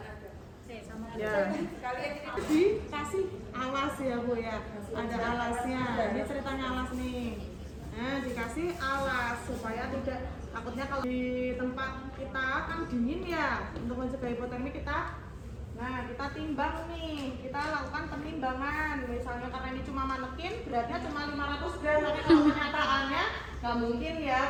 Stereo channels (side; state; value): both; identical; correlation 1.00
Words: Ya. Dikasih alas ya Bu ya. Ada alasnya. Ini ceritanya alas nih. Nah, dikasih alas supaya tidak, takutnya kalau di tempat kita kan dingin ya, untuk mencegah hipotermi kita timbang nih, kita lakukan penimbangan. Misalnya karena ini cuma manekin, beratnya cuma 500 gram, tapi kalau kenyataannya nggak mungkin ya,